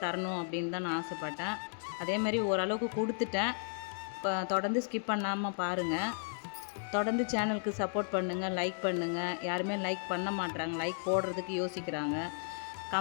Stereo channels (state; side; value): silent; right; digital silence